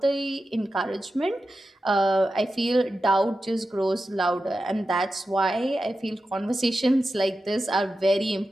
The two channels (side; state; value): both; normal; correlation 0.91